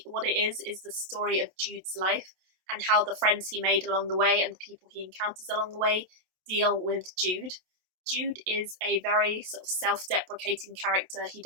what it is the story of Jude's life and how the friends he made along the way and the people he encounters along the way deal with Jude. Jude is a very sort of self-deprecating character. He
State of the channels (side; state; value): left; late; 27 ms